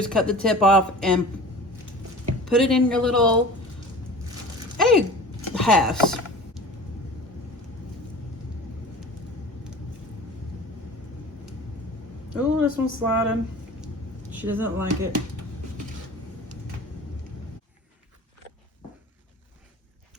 cut the tip off and put it in your little egg halves. Oh, this one's sliding. She doesn't like it.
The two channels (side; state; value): both; normal; correlation 0.39